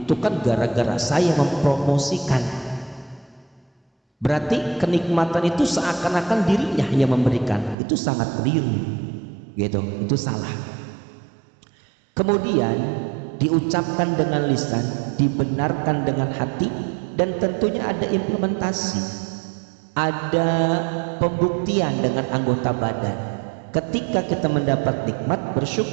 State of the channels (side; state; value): left; drops out; at 7.8 s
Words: kan gara-gara saya mempromosikan, berarti kenikmatan itu seakan-akan dirinya yang memberikan. Itu sangat keliru gitu, itu salah. Kemudian diucapkan dengan lisan, dibenarkan dengan hati, dan tentunya ada implementasi, ada pembuktian dengan anggota badan. Ketika kita mendapat nikmat,